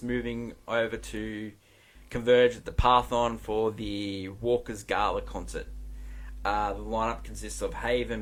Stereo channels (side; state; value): both; identical; correlation 1.00